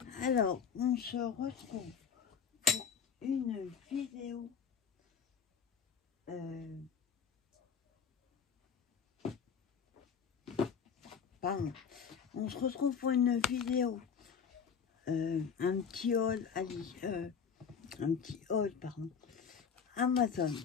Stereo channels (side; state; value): right; quieter; 6.7 dB